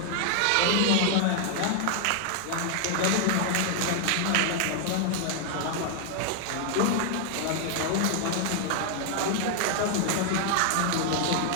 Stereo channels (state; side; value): different; both; correlation 0.00